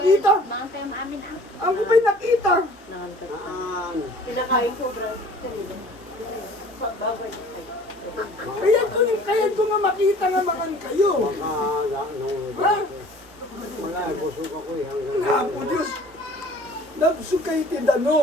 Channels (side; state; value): both; normal; correlation 0.50